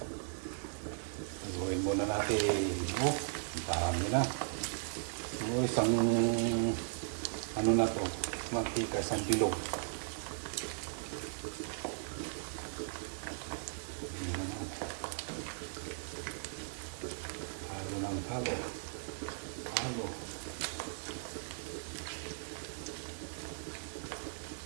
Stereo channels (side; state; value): left; silent; digital silence